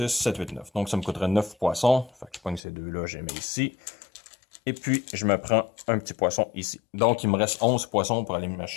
7, 8, 9. Donc ça me coûterait 9 poissons. Fait que je prends ces deux-là, je les mets ici. Et puis, je me prends un petit poisson ici. Donc, il me reste 11 poissons pour aller me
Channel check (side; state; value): right; drops out; at 2.6 s